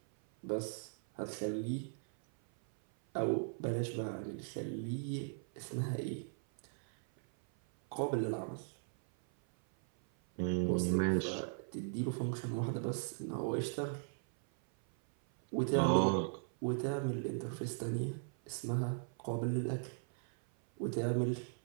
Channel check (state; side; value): silent; left; 53 dB below the other